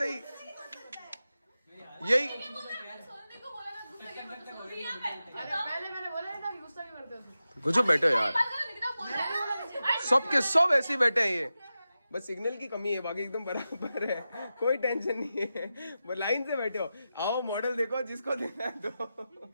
यही कुछ बैठे हो यार, सबके सब ऐसे ही बैठे हैं। ये बस सिग्नल की कमी है, बाकी एकदम बराबर है, कोई टेंशन नहीं है। वो लाइन से बैठे हो। आओ मॉडल देखो, जिसको देना है दो।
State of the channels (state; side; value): inverted; both; correlation -0.92